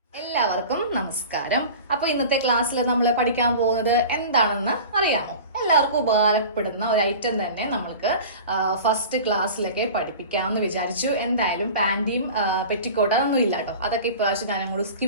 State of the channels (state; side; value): inverted; both; correlation -0.37